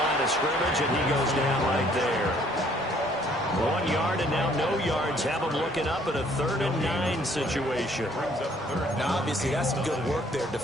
of scrimmage, and he goes down right there. 1 yard and now no yards. Have them looking up at a 3rd and 9 situation. Now, obviously, that's some good work there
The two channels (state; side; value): normal; both; correlation 0.62